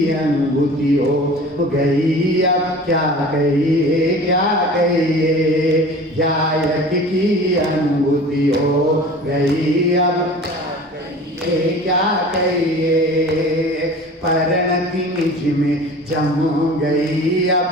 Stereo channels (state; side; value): normal; both; correlation 0.41